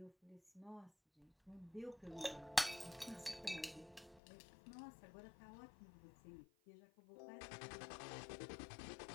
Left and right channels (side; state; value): right; drops out; at 4.2 s